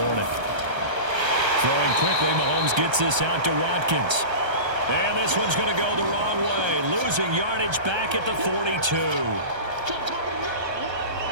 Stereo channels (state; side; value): late; left; 1.3 ms